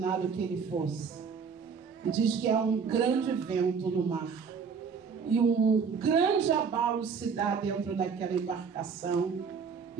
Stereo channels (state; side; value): quieter; left; 5.9 dB